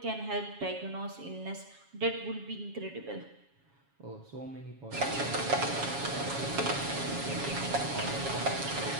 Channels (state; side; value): late; left; 7.2 ms